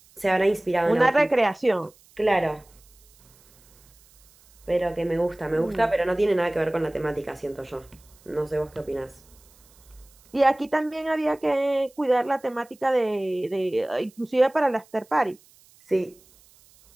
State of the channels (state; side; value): noise; right; hiss, 29 dB below the sound